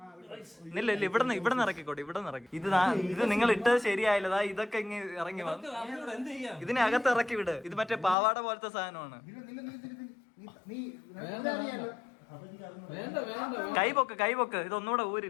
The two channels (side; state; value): right; drops out; at 8.2 s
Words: ഇല്ല ഇവിടുന്ന് ഇറക്കിക്കോട്ടെ. ഇവിടുന്ന് ഇറക്കി. ഇത് നിങ്ങൾ ഇട്ടത് ശരിയായില്ലതാ. ഇതൊക്കെ ഇങ്ങനെ ഇറങ്ങി വന്നു. ഇതിനകത്ത് ഇറക്കി വിട്. ഇത് മറ്റേ പാവാട പോലത്തെ സാധനമാണ്. വേണ്ട വേണ്ട കൈ പൊക്ക്. ഇതൊന്നുകൂടെ